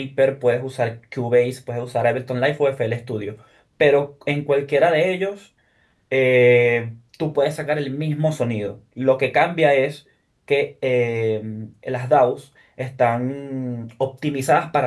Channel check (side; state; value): both; identical; correlation 1.00